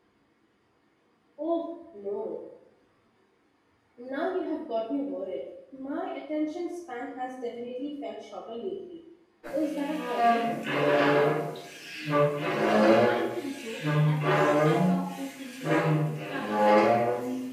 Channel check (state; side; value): identical; both; correlation 1.00